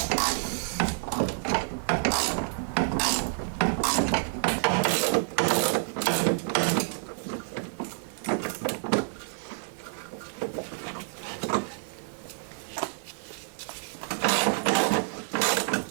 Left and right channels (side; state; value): left; silent; digital silence